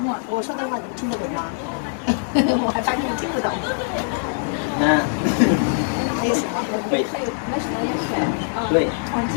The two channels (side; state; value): right; silent; 64 dB below the other